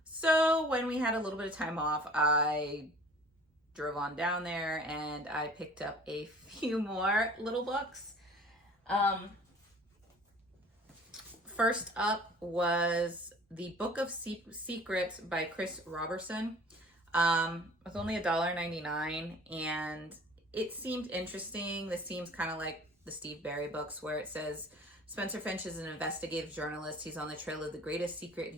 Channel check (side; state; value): both; normal; correlation 0.48